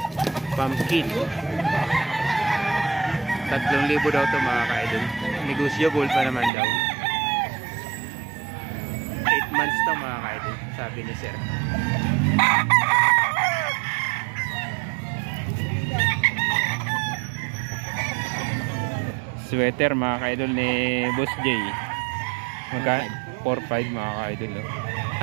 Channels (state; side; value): drops out; left; at 6.5 s